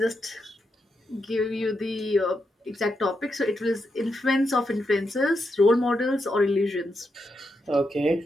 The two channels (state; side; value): normal; both; correlation 0.84